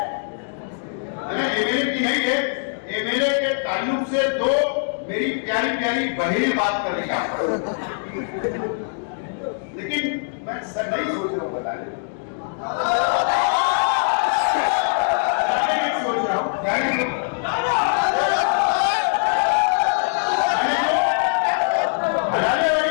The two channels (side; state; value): right; silent; digital silence